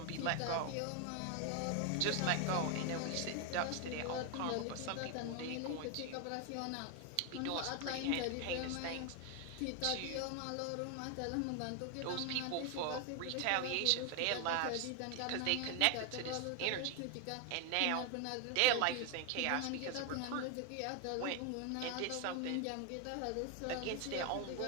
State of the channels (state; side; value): different; both; correlation 0.01